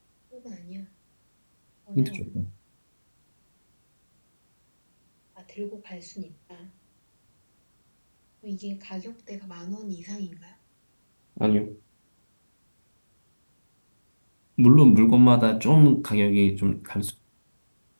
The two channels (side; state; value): both; inverted; correlation -1.00